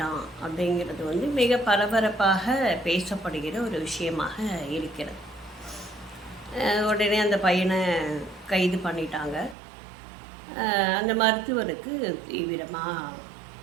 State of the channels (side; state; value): left; drops out; at 9.6 s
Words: அப்படிங்கிறது மிக பரபரப்பாக பேசப்படுகிற ஒரு விஷயமாக இருக்கிறது. உடனே அந்த பையனை கைது பண்ணிட்டாங்க. அந்த மருத்துவருக்கு தீவிரமாக